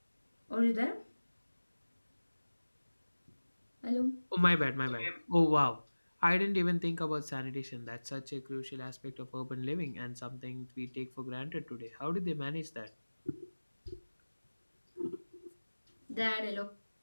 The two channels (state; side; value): inverted; both; correlation -1.00